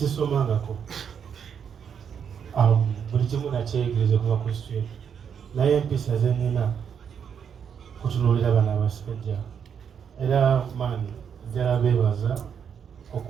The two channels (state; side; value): quieter; left; 7.5 dB